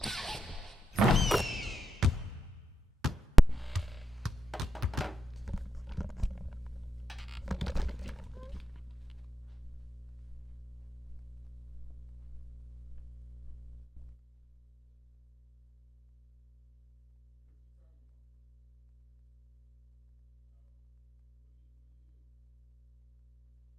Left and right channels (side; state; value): both; normal; correlation 0.87